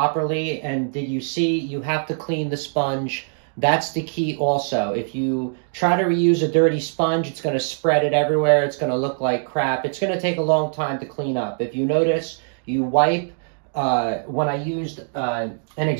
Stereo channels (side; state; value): left; silent; digital silence